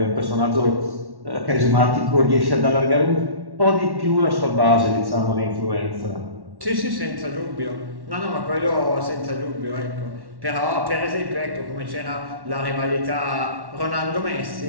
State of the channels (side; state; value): left; late; 1.1 ms